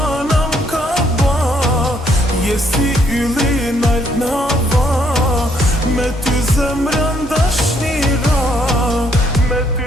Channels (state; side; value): normal; both; correlation 0.69